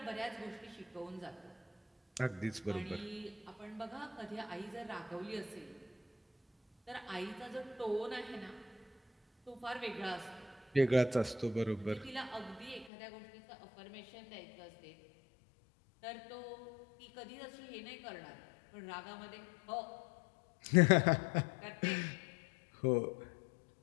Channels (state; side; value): drops out; right; at 12.9 s